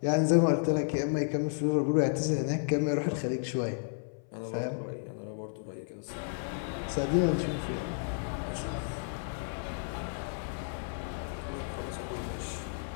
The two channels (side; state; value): right; silent; 56 dB below the other